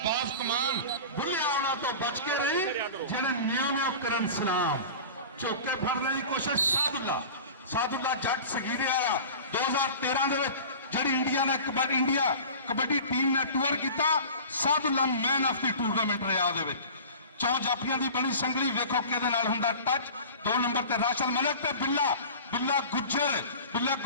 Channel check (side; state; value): both; inverted; correlation -0.37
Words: ਬਾਜ਼ ਕਮਾਨ। ਬੁੱਲੇ ਆਉਣਾ ਤੋਂ ਬਚ ਕੇ ਰਹੀ ਜਿਹੜੇ ਨਿਉ ਕਰਨ ਸਲਾਮ। ਝੋਕੇ ਫੜਨ ਦੀ ਕੋਸ਼ਿਸ਼ ਸਾਦੁੱਲਾ ਜੱਟ ਸਗੀਰੇ ਵਾਲਾ 2013 ਦੇ ਵਿੱਚ ਜਿਹੜੀ ਇੰਡੀਆ ਨੇ ਕਬੱਡੀ ਟੀਮ ਨੇ ਟੂਰ ਕੀਤਾ, Sadullah man of the tournament ਰਿਹਾ। ਉਹਦੇ ਵਿੱਚ 4 ਜਾਫੀਆਂ ਦੀ ਬਣੀ ਸੰਗਲੀ, ਵੇਖੋ ਕਿਹਦੇ ਨਾਲ ਹੁੰਦਾ ਟੱਚ। 2 ਨੰਬਰ ਤੇ ਰਾਸ਼ਦ ਮਲਿਕ ਤੇ ਬਿੱਲਾ